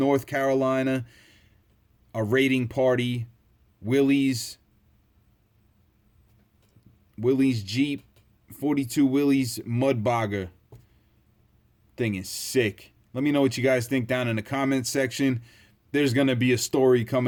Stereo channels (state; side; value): identical; both; correlation 1.00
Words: Carolina. A rating party, Willys Jeep 42 Willys Mud Bogger. Thing is sick. Let me know what you guys think down in the comments section. There's going to be a story